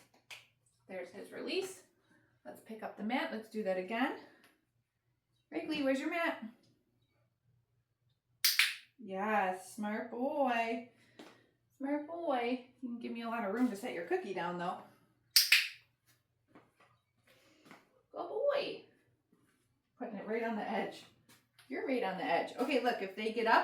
There's his release. Let's pick up the mat. Let's do that again. Wrigley, where's your mat? Yes, smart boy. Smart boy. You can give me a lot of room to set your cookie down, though. Good boy. Putting it right on the edge. You're right on the edge. Okay, look, if they get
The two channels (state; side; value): identical; both; correlation 1.00